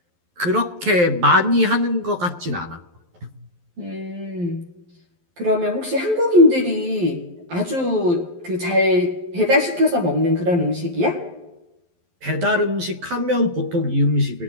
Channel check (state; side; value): late; left; 11 ms